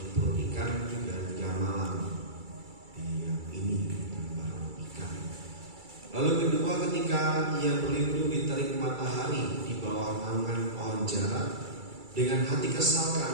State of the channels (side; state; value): left; late; 2.3 ms